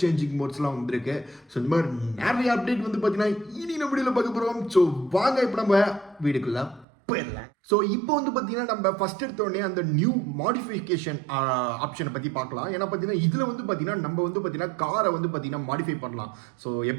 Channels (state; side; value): drops out; left; at 6.9 s